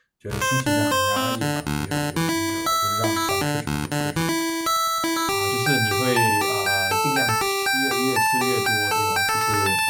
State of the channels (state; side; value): identical; both; correlation 1.00